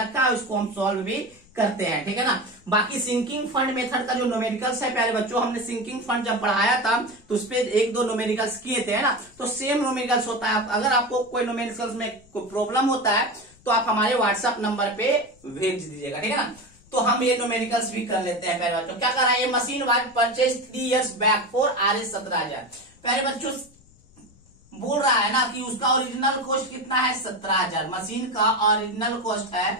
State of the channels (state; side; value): noise; left; rumble, 28 dB below the sound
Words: है, उसको हम सॉल्व भी करते हैं, ठीक है ना। बाकी सिंकिंग फंड मेथड का जो न्यूमेरिकल्स है प्यारे बच्चों, हमने सिंकिंग फंड जब पढ़ाया था तो उस पे 1-2 न्यूमेरिकल्स किए थे, है ना। तो सेम न्यूमेरिकल्स होता है, अगर आपको कोई न्यूमेरिकल्स में कोई प्रॉब्लम होता है तो आप हमारे व्हाट्सएप नंबर पे भेज दीजिएगा, ठीक है ना। तो हम ये न्यूमेरिकल्स भी कर लेते हैं प्यारे बच्चों। क्या कर रहा है, ये machine was purchase 3 years back for Rs 17,000। प्यारे बच्चों बोल रहा है ना कि उसका ओरिजिनल कॉस्ट कितना है, 17,000। मशीन का ओरिजिनल कॉस्ट